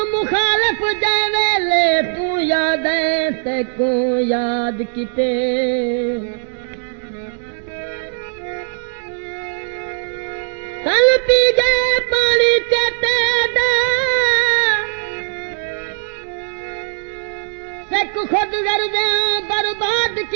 मुखालफ जावे ले तू याद है ते को याद किते कल पी गए पानी चेते दा सिख खुद गर्दे बर्बाद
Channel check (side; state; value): left; silent; digital silence